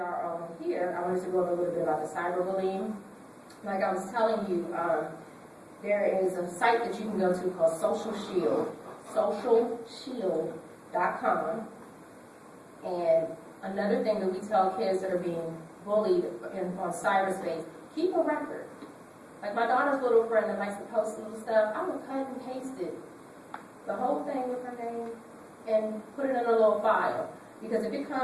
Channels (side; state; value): both; identical; correlation 1.00